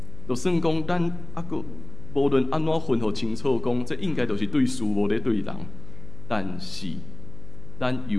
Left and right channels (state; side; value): noise; left; hum, 15 dB below the sound